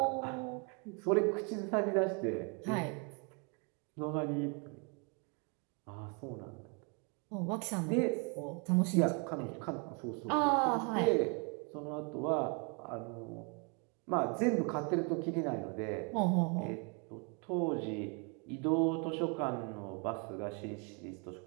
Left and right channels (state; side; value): quieter; left; 35.0 dB